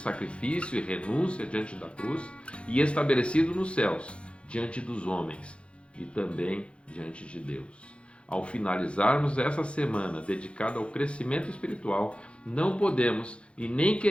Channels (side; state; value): right; late; 0.059 ms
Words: e renúncia diante da cruz e estabelecido nos céus, diante dos homens e também diante de Deus. Ao finalizarmos essa semana dedicada ao crescimento espiritual, não podemos e nem